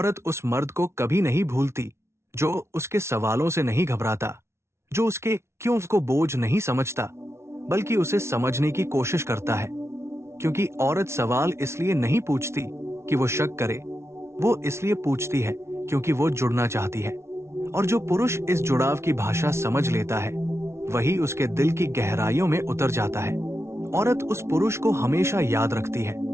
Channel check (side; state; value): left; late; 0.13 ms